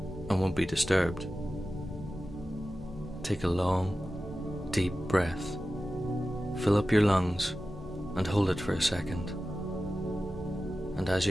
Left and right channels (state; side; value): normal; both; correlation 0.94